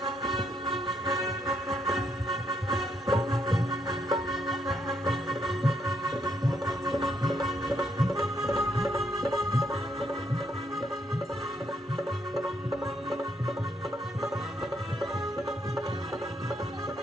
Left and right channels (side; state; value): both; normal; correlation 0.75